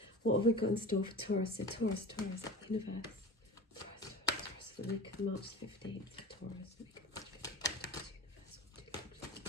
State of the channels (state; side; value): normal; both; correlation 0.34